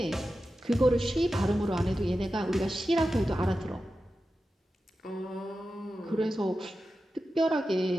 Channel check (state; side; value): normal; both; correlation 0.92